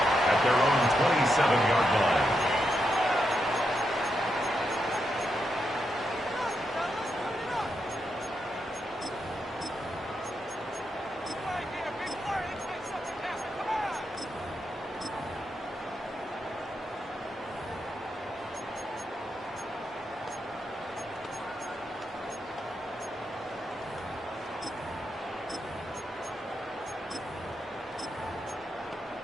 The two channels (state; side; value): normal; both; correlation 0.84